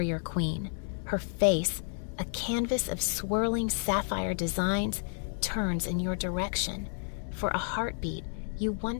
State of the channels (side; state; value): right; silent; 57 dB below the other